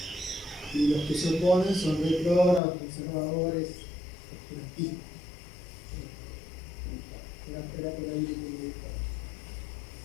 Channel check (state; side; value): drops out; right; at 2.6 s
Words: y los que se oponen son retrógrados, conservadores,